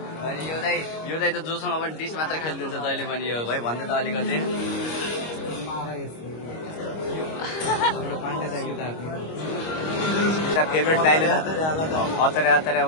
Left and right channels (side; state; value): right; late; 25 ms